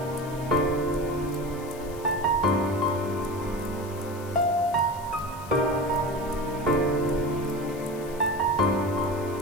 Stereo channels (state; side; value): noise; left; hiss, 19 dB below the sound